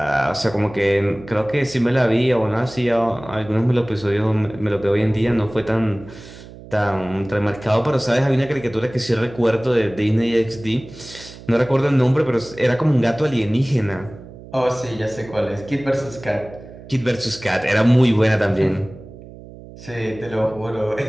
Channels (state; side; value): noise; right; hum, 17 dB below the sound